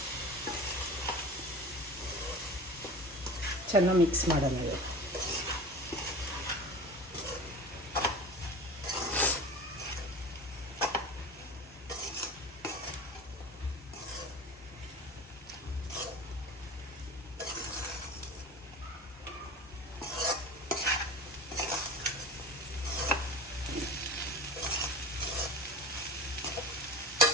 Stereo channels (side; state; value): both; normal; correlation 0.34